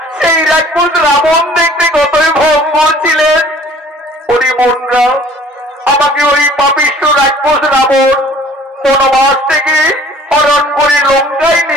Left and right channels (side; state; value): both; normal; correlation 0.52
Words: সেই রাক্ষস রাবণ দেখতে কতই ভঙ্গুর ছিলেন। ওরে বোনরা, আমাকে ওই পাপিষ্ঠ রাক্ষস রাবণ বনবাস থেকে হরণ করে লঙ্কায়